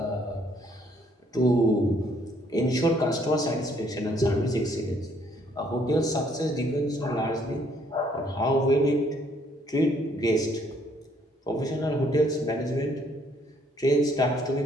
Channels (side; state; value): both; normal; correlation 0.66